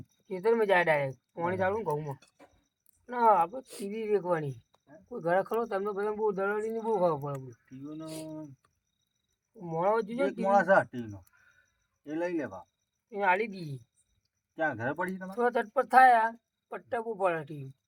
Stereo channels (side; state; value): both; identical; correlation 1.00